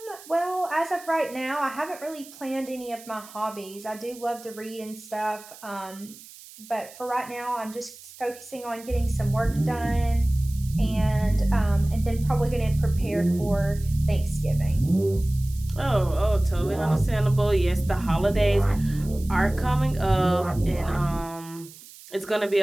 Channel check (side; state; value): right; noise; hiss, 19 dB below the sound